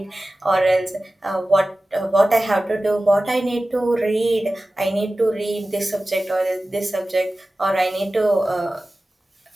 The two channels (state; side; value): normal; both; correlation 0.96